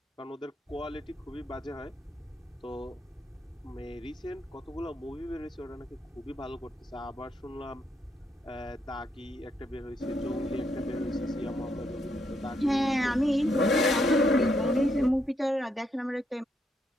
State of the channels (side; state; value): both; normal; correlation 0.76